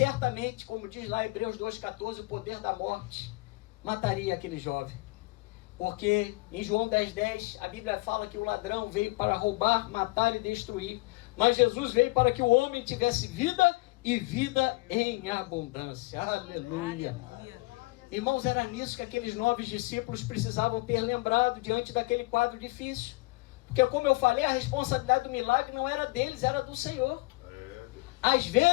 como diz lá em Hebreus 2,14, o poder da morte mataria aquele jovem. Porque em João 10,10, a Bíblia fala que o ladrão veio para roubar, matar e destruir. Mas Jesus veio para que o homem tivesse vida e vida em abundância. Aleluia. Irmãos, era nisso que aqueles 9 discípulos precisavam ter lembrado diante daquele quadro difícil. Porque, como eu falei, a responsabilidade do milagre não era deles, era do Senhor. Às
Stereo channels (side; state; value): right; quieter; 23.4 dB